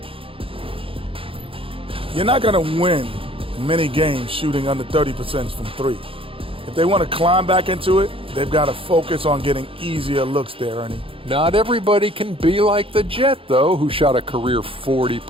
You're not going to win many games shooting under 30% from three. If they want to climb back into it, they've got to focus on getting easier looks there, Ernie. Not everybody can be like the Jet, though, who shot a career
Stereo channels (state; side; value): late; left; 0.26 ms